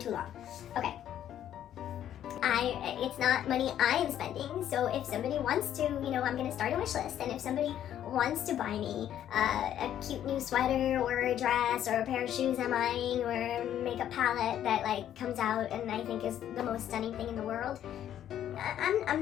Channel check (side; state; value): right; quieter; 10.9 dB